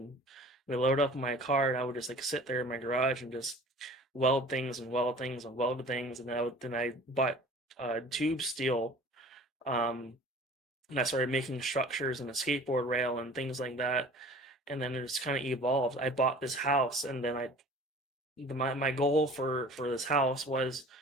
we loaded up my car, and I would just like sit there in my garage and just weld things and weld things and weld things. And then I bought tube steel, and I started making structures and a skateboard rail and things like that. And then it just kind of evolved. I bought this house, and then my goal for this house was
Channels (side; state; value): both; normal; correlation 0.45